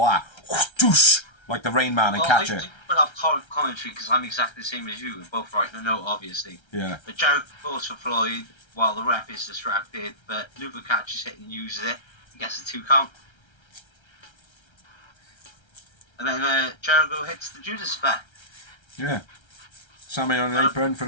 that, whoosh, like the Rain Man and catch it. I put up commentary because I'm exactly the same as you. We're both writing a note, obviously. Yeah. But Jericho goes for Floyd while the ref is distracted, but Luther catches it and uses it. He gets a 2 count. And then Jericho hits the Judas effect. Yeah. Sammy on an apron for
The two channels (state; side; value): late; right; 1.3 ms